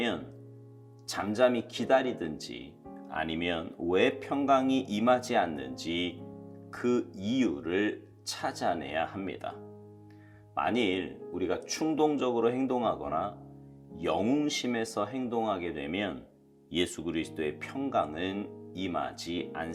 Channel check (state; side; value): identical; both; correlation 1.00